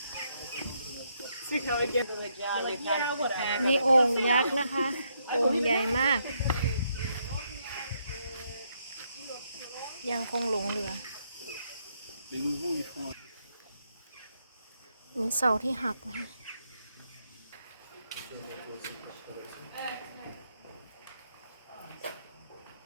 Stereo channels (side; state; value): both; inverted; correlation -0.76